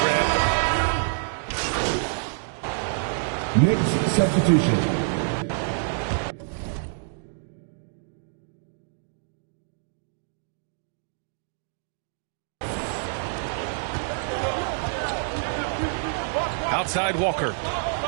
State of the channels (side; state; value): left; silent; 60 dB below the other